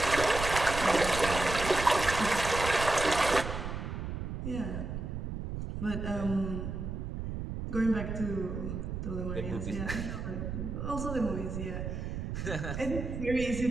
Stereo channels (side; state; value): right; noise; rumble, 5 dB below the sound